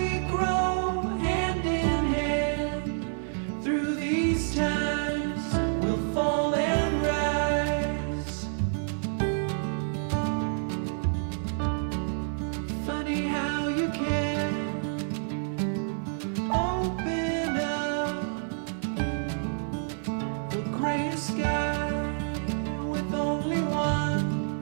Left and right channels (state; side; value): silent; left; digital silence